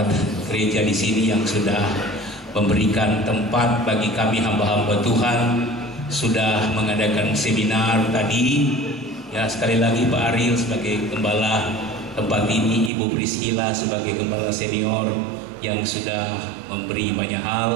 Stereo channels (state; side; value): drops out; left; at 12.9 s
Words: gereja di sini yang sudah memberikan tempat bagi kami hamba-hamba Tuhan, sudah mengadakan seminar tadi. Ya, sekali lagi Pak Ariel sebagai gembala tempat ini, Ibu Priscilla sebagai gembala senior yang sudah memberi banyak